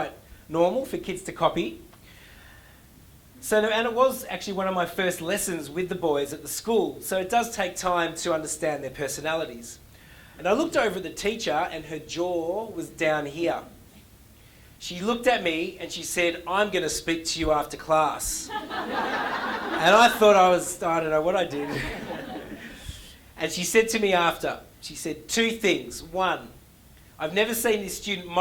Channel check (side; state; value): both; identical; correlation 1.00